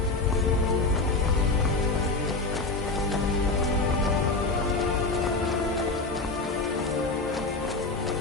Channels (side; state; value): right; quieter; 3.4 dB